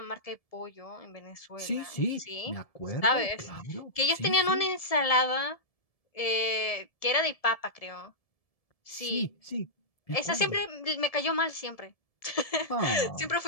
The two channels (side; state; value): right; late; 1.7 ms